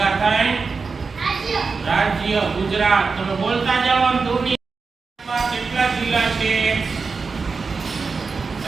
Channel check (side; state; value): left; quieter; 4.7 dB